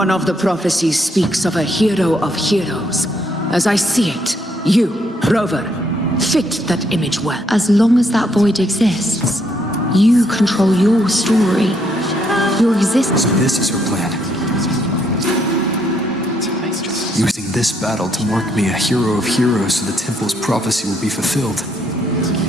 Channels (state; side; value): normal; both; correlation 0.72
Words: of the prophecies speaks of a hero of heroes. As I see it, you, Rover, fit that image well. As long as that void exists, you control your story, your existence. So this is her plan. Using this battle to mark me a hero of heroes so the temple's prophecy will be fulfilled.